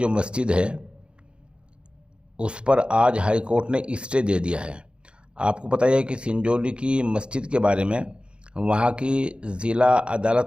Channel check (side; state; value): left; late; 0.055 ms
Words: مسجد ہے اس پر آج ہائی کورٹ نے اسٹے دے دیا ہے۔ آپ کو پتہ ہے کہ سنجولی کی مسجد کے بارے میں وہاں کی ضلع